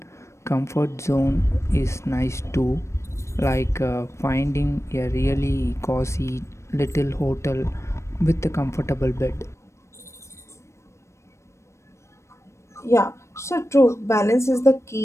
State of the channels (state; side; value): late; right; 0.13 ms